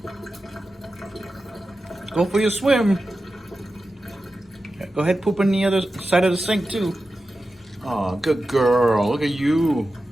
Go for your swim. Go ahead, poop on the other side of the sink too. Oh, good girl. Look at you.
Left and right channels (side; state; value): both; normal; correlation 0.93